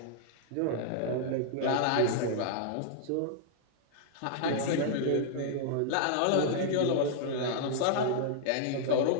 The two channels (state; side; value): different; both; correlation -0.01